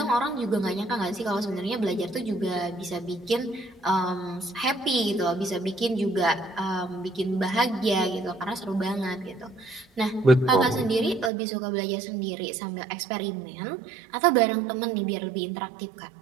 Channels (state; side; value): drops out; left; at 11.3 s